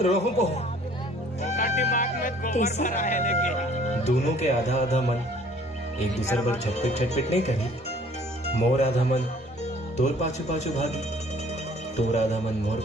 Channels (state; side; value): normal; both; correlation 0.55